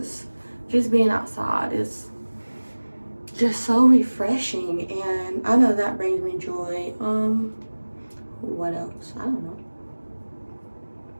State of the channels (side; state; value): both; inverted; correlation -1.00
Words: just being outside is just so refreshing, and I know that brings me joy. What else? I don't know.